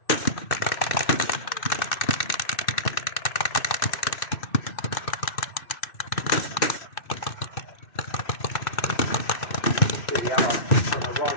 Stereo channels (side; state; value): right; late; 2.6 ms